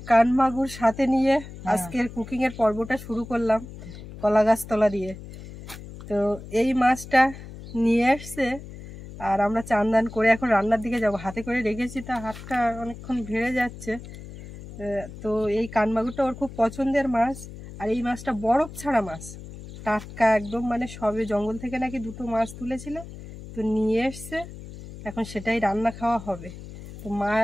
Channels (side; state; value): left; noise; hum, 14 dB below the sound